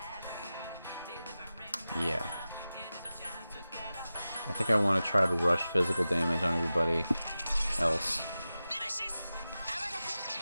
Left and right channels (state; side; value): inverted; both; correlation -0.94